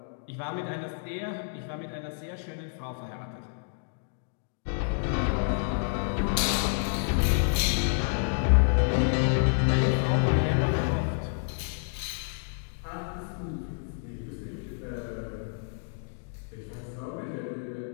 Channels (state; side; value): silent; right; digital silence